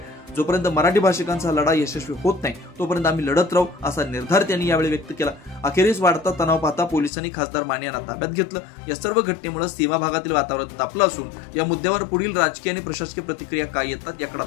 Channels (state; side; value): drops out; right; at 7.1 s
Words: जोपर्यंत मराठी भाषिकांचा लढा यशस्वी होत नाही तोपर्यंत आम्ही लढत राहू असा निर्धार त्यांनी यावेळी व्यक्त केला। अखेरीस वाढता तणाव पाहता पोलिसांनी खासदार माने यांना ताब्यात घेतलं। या सर्व घटनेमुळे सीमा भागातील वातावरण तापलं असून या मुद्द्यावर पुढील राजकीय आणि प्रशासकीय प्रतिक्रिया काय येतात याकडे